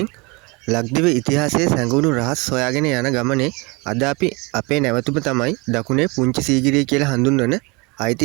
ලක්දිව ඉතිහාසයේ සැඟවුණු රහස් හොයාගෙන යන ගමනේ අද අපි අපේ නැවතුම තමයි දකුණේ පුංචි සීගිරිය කියලා හඳුන්වන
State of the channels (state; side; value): quieter; left; 27.5 dB